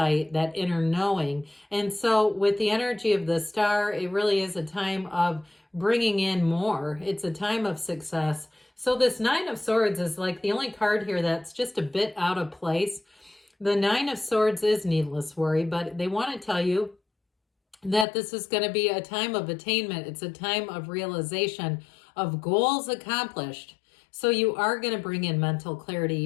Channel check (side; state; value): right; drops out; at 18.1 s